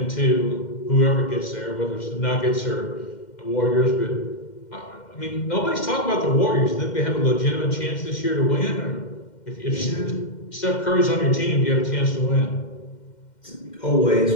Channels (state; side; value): late; right; 2.1 ms